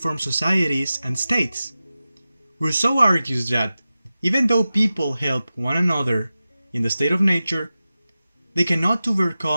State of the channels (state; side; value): inverted; both; correlation -0.94